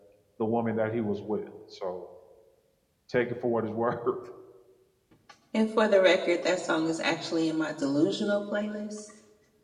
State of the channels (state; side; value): identical; both; correlation 1.00